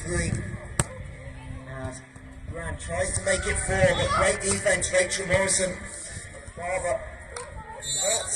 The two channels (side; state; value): both; identical; correlation 1.00